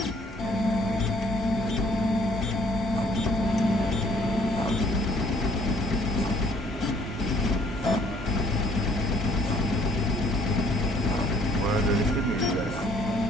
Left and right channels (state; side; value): normal; both; correlation 0.61